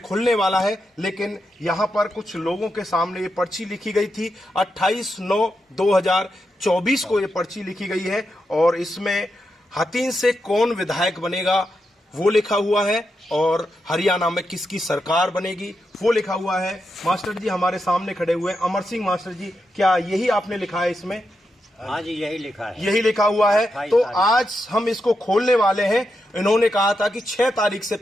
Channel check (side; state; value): both; normal; correlation 0.86